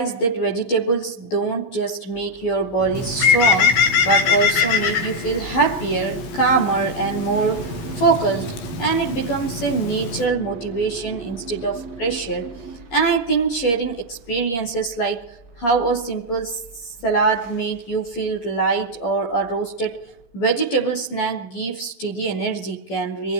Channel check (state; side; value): late; right; 13 ms